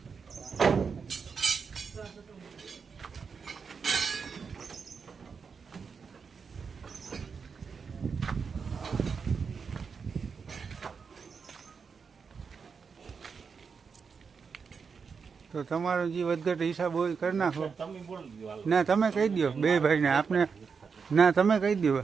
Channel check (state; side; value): quieter; left; 5.7 dB